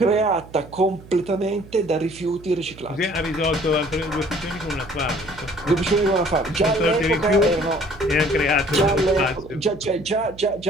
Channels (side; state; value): right; noise; hum, 19 dB below the sound